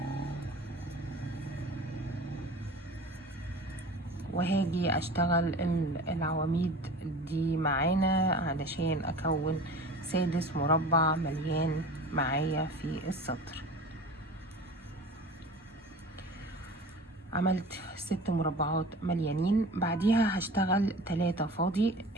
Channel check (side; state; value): both; normal; correlation 0.38